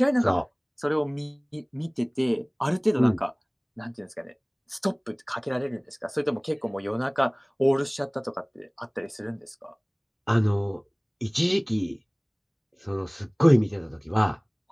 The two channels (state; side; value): identical; both; correlation 1.00